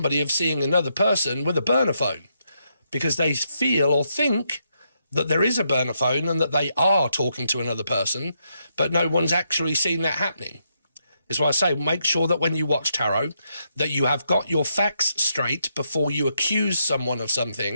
of seeing another person with a burner phone because they feel or think that there is a burner phone and that they are talking to another person, but no one's actually seen that happening. Is why I say make sure that when you watch tarot that you have got your facts straight before you accuse someone of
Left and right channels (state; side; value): inverted; both; correlation -0.79